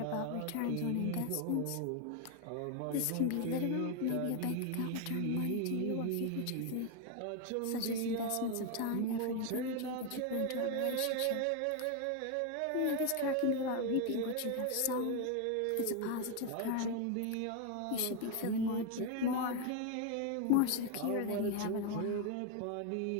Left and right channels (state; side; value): different; both; correlation 0.01